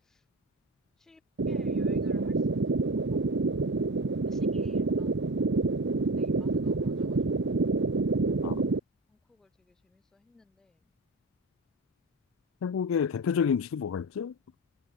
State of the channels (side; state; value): both; normal; correlation 0.26